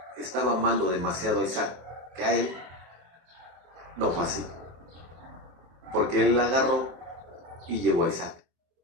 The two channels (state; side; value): late; left; 23 ms